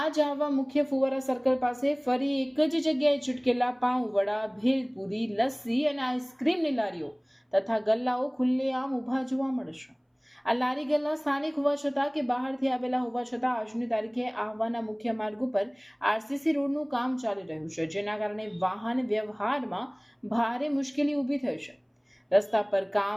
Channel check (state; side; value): identical; both; correlation 1.00